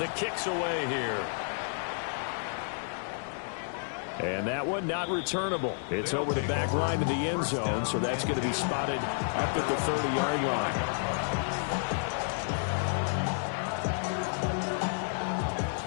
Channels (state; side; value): silent; right; digital silence